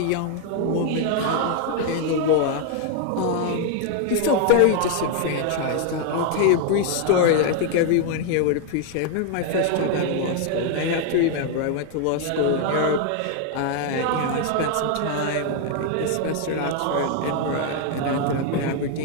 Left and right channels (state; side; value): different; both; correlation 0.00